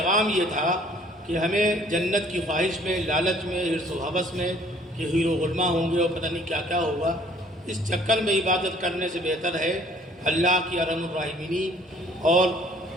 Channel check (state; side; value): normal; both; correlation 0.57